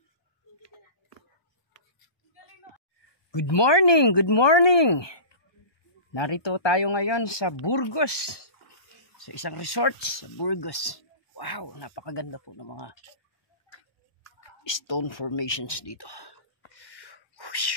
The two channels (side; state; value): right; late; 1.2 ms